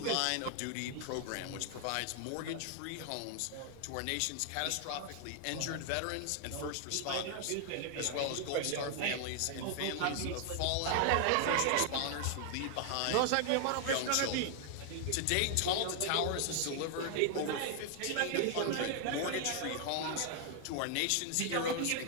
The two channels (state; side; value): different; both; correlation 0.00